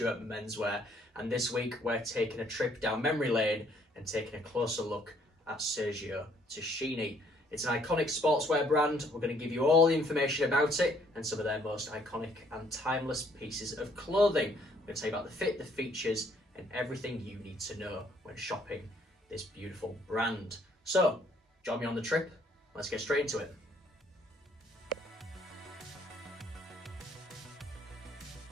Menswear, and this week we're taking a trip down memory lane and taking a closer look at Sergio Tacchini. It's an iconic sportswear brand. We're going to give you all the information about it and some of their most iconic and timeless pieces of clothing. We're going to tell you about the fit, the features, and everything you need to know when shopping this beautiful brand. So, join me on the trip. Let's get straight into it.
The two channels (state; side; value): normal; both; correlation 0.64